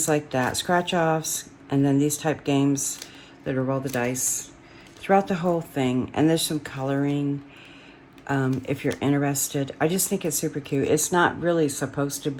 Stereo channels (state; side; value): identical; both; correlation 1.00